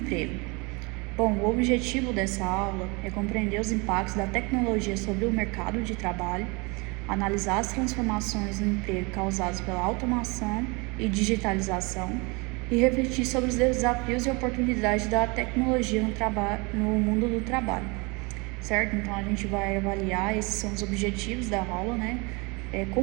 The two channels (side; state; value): left; quieter; 28.2 dB